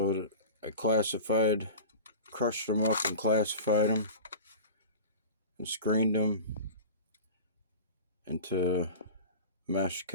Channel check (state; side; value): inverted; both; correlation -0.34